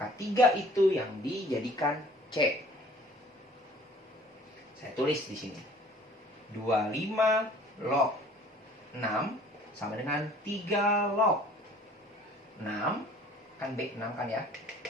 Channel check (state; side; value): normal; both; correlation 0.53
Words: 3 itu yang dijadikan C. Saya tulis di sini. 25 log 6 sama dengan 3 log 6, kan B 6 kan ya,